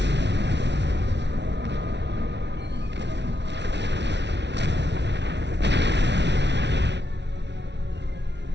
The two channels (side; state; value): left; late; 0.51 ms